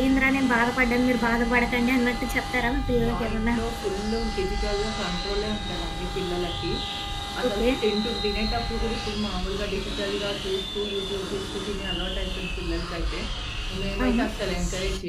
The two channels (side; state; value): both; identical; correlation 1.00